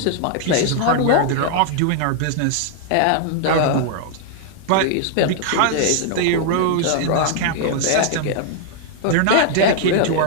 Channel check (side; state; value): both; different; correlation 0.00